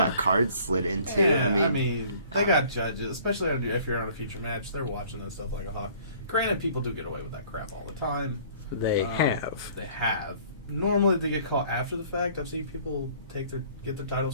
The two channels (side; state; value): both; inverted; correlation -0.54